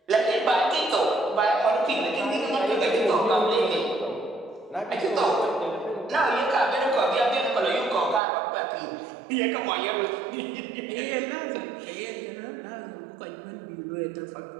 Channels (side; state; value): left; drops out; at 8.2 s